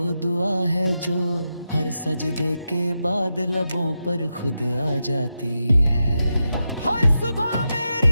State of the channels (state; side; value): inverted; both; correlation -0.88